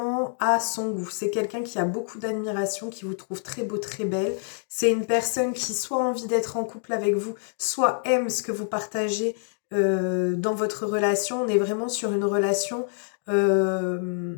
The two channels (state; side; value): silent; right; 60 dB below the other